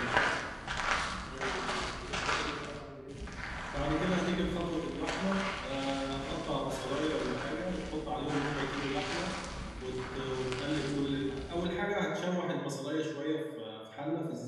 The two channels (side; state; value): both; identical; correlation 1.00